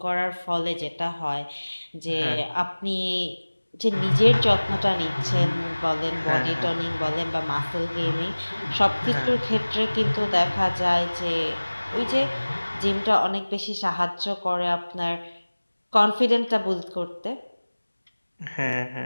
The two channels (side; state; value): both; inverted; correlation -1.00